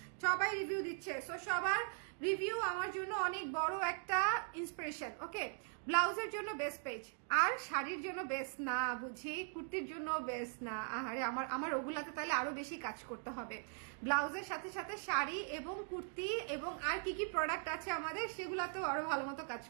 সবাই রিভিউ দিচ্ছে। সো সবার রিভিউ আমার জন্য অনেক বড় একটা ইন্সপিরেশন। ওকে, ব্লাউজের জন্য বেস্ট পেজ, আর শাড়ির জন্য বেস্ট না বুঝি, কুর্তির জন্য বেস্ট না। আরে আমার ওগুলাতে তাহলে আরো বেশি কাজ করতে হবে। ব্লাউজের সাথে সাথে শাড়ি এবং কুর্তি এবং আর কি কি প্রোডাক্ট আছে আমাদের, সেগুলাতেও আরো ভালো মতো কাজ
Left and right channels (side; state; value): left; silent; 51 dB below the other